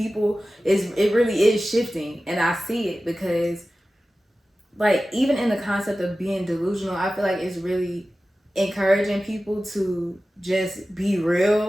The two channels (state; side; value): normal; both; correlation 0.95